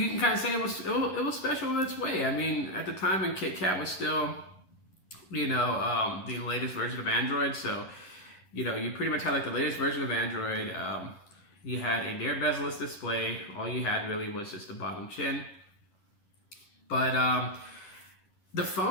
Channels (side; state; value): right; late; 11 ms